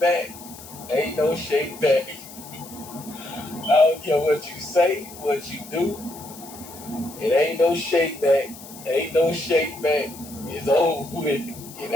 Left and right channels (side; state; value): left; noise; hiss, 17 dB below the sound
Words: Ain't no shake back. I don't care what you say, what you do. It ain't no shake back. Ain't no shake back. It's over with. It